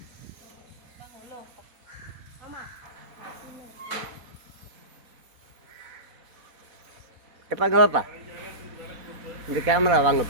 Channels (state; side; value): late; left; 4.1 ms